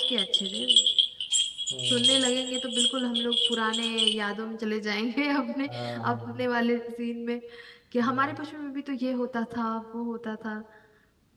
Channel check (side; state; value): both; identical; correlation 1.00